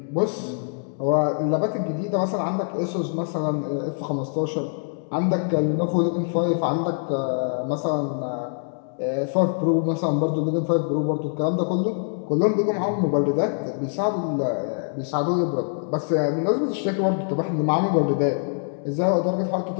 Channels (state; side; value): silent; right; digital silence